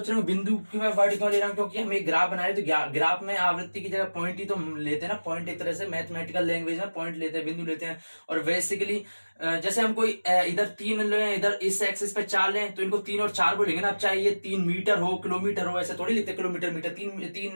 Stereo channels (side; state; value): both; inverted; correlation -1.00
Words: रहे हो बिंदु की मैं वर्ड क्यों ले रहा हूँ, क्योंकि हम एक ग्राफ बना रहे हैं, तो ग्राफ में आवृत्ति की जगह पॉइंट ही तो लेते हैं ना। पॉइंट एक तरह से मैथमेटिकल लैंग्वेज में पॉइंट लेते हैं, बिंदु लेते हैं। और बेसिकली जैसे हम कोई इधर 3 लें, इधर इस एक्सिस पे 4 लें, तो इनको 3 और 4 बोलेंगे ना। अब चाहे ये 3 मीटर हो, किलोमीटर हो, ऐसे थोड़ी लिखते हैं किलोमीटर मीटर,